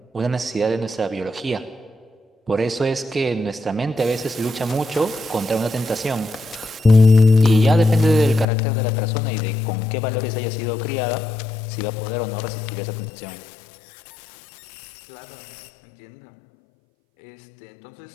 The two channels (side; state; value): right; drops out; at 8.5 s